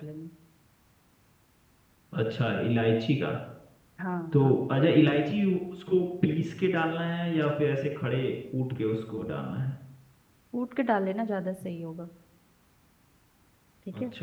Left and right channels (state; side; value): identical; both; correlation 1.00